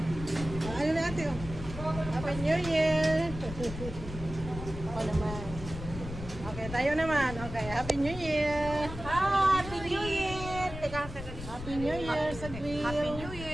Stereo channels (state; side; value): noise; left; rumble, 10 dB below the sound